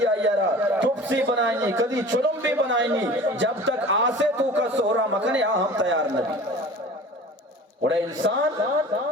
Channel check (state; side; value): normal; both; correlation 0.41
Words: آئیرہ ٹپسی بنائنی کدی چلم بھی بنائنی جب تک آسے تو کا سورا مکنے ہم تیار نبی اور انسان